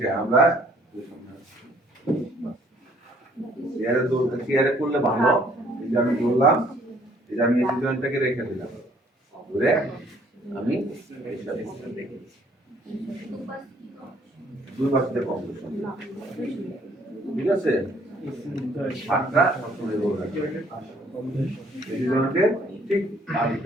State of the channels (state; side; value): normal; both; correlation 0.62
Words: আমরা চেয়ারে করলে ভালো। এটা আমি বললাম, এটা আমি এই জয়েন্টটাকে রেখে দিলাম, ধরে আমি দুই পাশে কম, ঠিক আছে? হাতটা সবসময় রোল রাখবে এই জয়েন্টের ঠিক